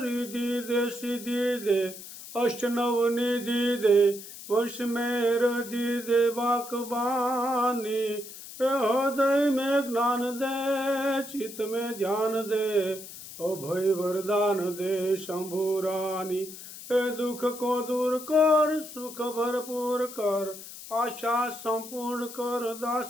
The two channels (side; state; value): left; noise; hiss, 13 dB below the sound